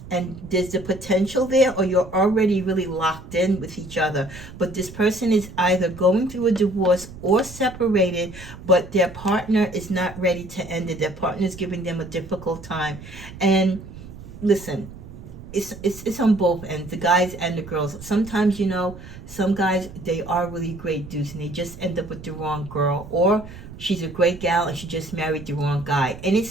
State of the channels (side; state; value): right; noise; rumble, 15 dB below the sound